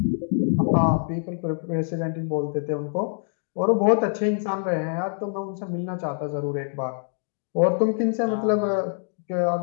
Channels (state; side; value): silent; right; digital silence